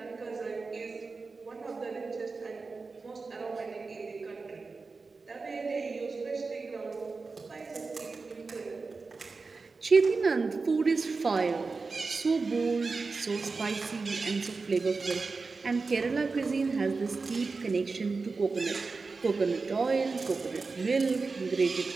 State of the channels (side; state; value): left; quieter; 4.2 dB